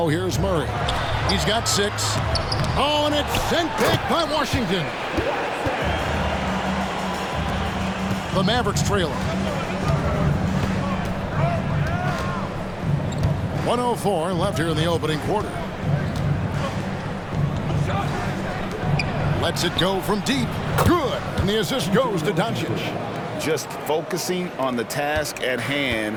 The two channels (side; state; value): both; identical; correlation 1.00